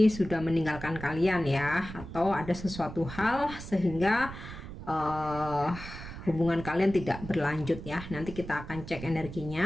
sudah meninggalkan kalian ya, atau ada sesuatu hal sehingga hubungan kalian tidak berlanjut ya. Nanti kita akan cek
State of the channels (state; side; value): noise; right; rumble, 11 dB below the sound